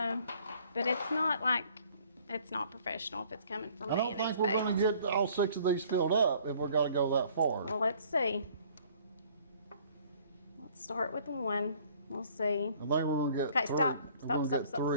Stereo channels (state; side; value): inverted; both; correlation -0.57